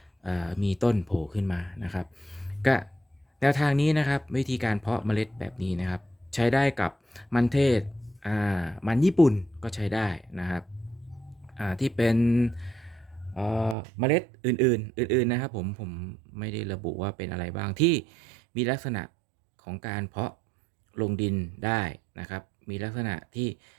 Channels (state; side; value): drops out; left; at 13.8 s